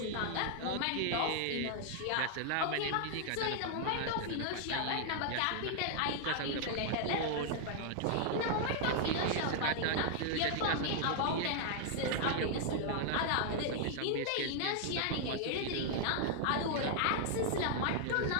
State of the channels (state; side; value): different; both; correlation 0.00